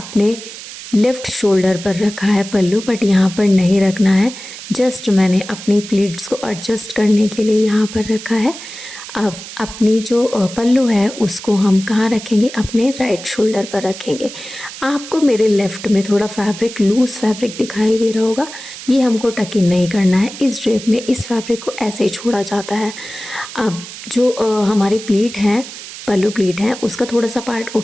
लेफ़्ट शोल्डर पर रखा है पल्लू, बट यहाँ पर नहीं रखना है। जस्ट मैंने अपनी प्लीट्स को एडजस्ट करने के लिए यहाँ पर रखा है। अब अपनी जो पल्लू है उसको हम कहाँ रखेंगे, अपने राइट शोल्डर पर रखेंगे। आपको मेरे लेफ़्ट में थोड़ा फैब्रिक, लूज़ फैब्रिक दिखाई दे रहा होगा, ये हमको टक इन नहीं करना है। इस ड्रेप में इस फैब्रिक को ऐसे ही छोड़ा जाता है। अब जो हमारी प्लीट है, पल्लू प्लीट है, उसका थोड़ा सा पार्ट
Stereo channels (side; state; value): right; noise; hiss, 13 dB below the sound